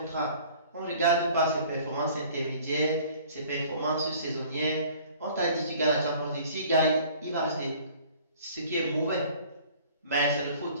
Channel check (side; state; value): both; inverted; correlation -0.51